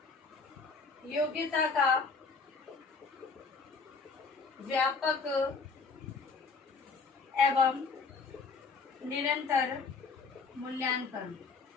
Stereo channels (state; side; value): quieter; right; 4.6 dB